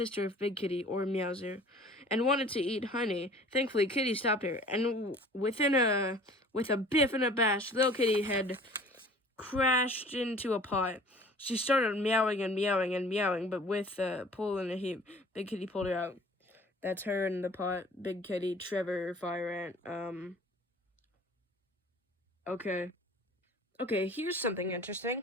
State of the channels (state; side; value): normal; both; correlation 0.48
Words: Big Kitty, or Meowser, and wanted to eat Honey. Thankfully, Kitty stopped her, and with a biff and a bash, Little Kitty had crashed into a pot. She started meowing and meowing and meowing, but with a pull and a heap, Big Kitty pulled her out. That's her in the pot. Big Kitty, Trevor, Fire Ant. Okay. Okay, here's something